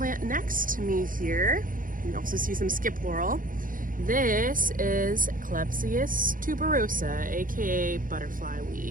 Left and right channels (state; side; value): late; left; 0.40 ms